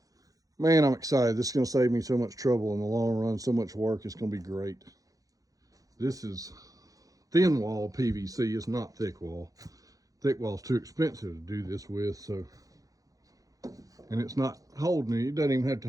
Man, I'm excited. This is going to save me so much trouble in the long run, so much work. It's going to be great. This is thin wall PVC. It's not thick wall. Thick wall is too expensive to do this with, so and it's not holding it. It doesn't even have to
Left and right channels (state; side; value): late; left; 0.17 ms